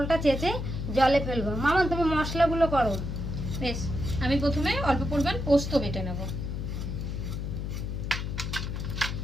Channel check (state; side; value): noise; left; hum, 4 dB below the sound